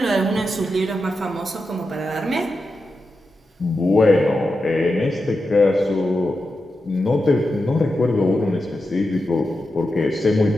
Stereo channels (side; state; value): both; normal; correlation 0.89